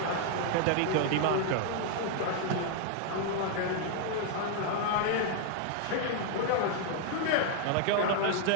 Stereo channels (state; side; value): different; both; correlation 0.00